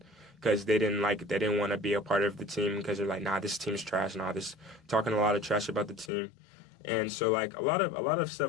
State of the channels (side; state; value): right; drops out; at 6.1 s